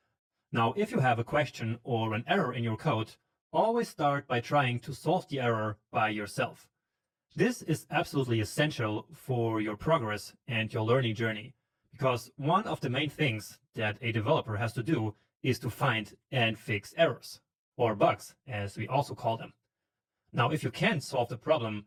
Now, if you have a question or an error in your code, always start by trying to solve the error by yourself. This is absolutely essential for your progress and your learning journey, because one of the main things that a developer has to do is to find and fix errors, or bugs, as we also call them. Now, if you can't solve the problem,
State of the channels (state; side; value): identical; both; correlation 1.00